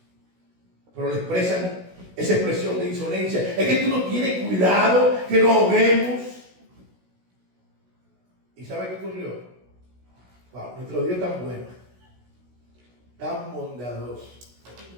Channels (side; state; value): left; late; 16 ms